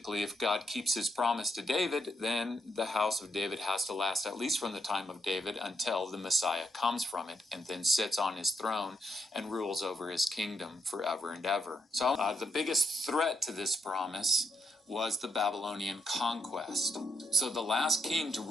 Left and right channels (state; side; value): normal; both; correlation 0.80